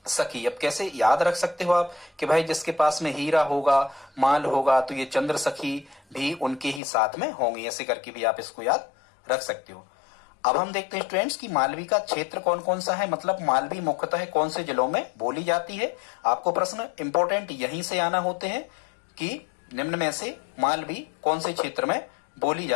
सखी। अब कैसे याद रख सकते हो आप कि भाई जिसके पास में हीरा होगा, माल होगा, तो ये चंद्र सखी भी उनके ही साथ में होंगी, ऐसे करके भी आप इसको याद रख सकते हो। अब हम देखते हैं स्टूडेंट्स कि मालवी का क्षेत्र कौन कौन सा है, मतलब मालवी मुख्यतः कौन से जिलों में बोली जाती है। आपको प्रश्न इंपॉर्टेंट यहीं से आना होते हैं कि निम्न में से मालवी कौन से क्षेत्र में बोली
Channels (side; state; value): right; drops out; at 6.8 s